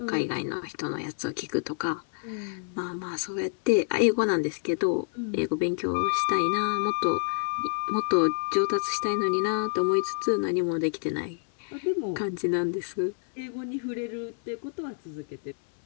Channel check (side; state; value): right; silent; digital silence